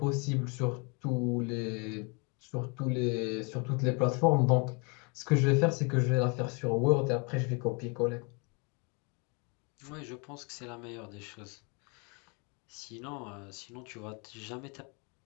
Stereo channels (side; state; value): right; quieter; 32.9 dB